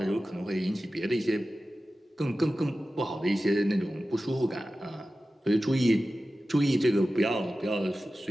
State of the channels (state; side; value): normal; both; correlation 0.94